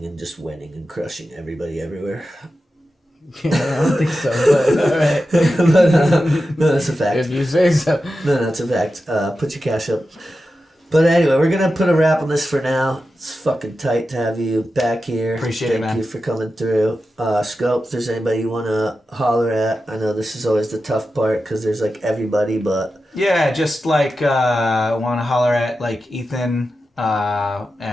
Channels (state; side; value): normal; both; correlation 0.91